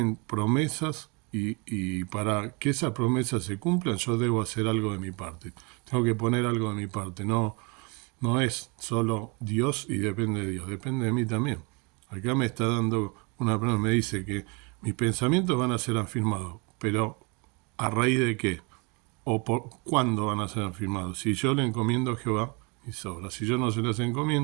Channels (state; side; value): quieter; left; 30.9 dB